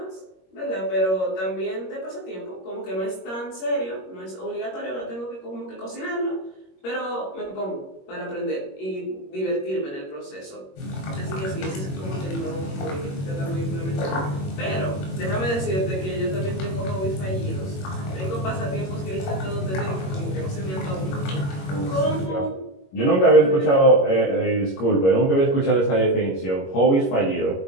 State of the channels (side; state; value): right; late; 21 ms